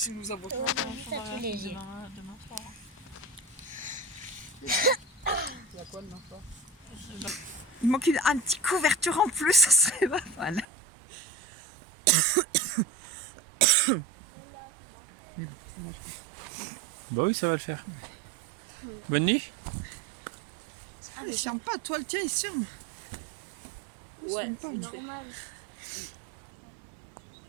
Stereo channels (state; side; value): drops out; left; at 10.7 s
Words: nous avons Ça fait léger. Demain soir. Il y a quoi demain soir? Il manque un petit couverture en plus, ça serait pas mal. Mais bon, ça va le faire. Bah oui, ça va le faire. Bonne nuit. Ah, il se ferme pas, toi le tien il se ferme. Il se ferme pas, lui.